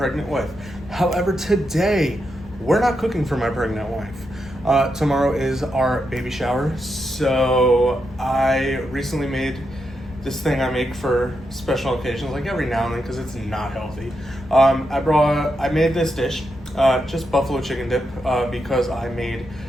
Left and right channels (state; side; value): noise; left; rumble, 20 dB below the sound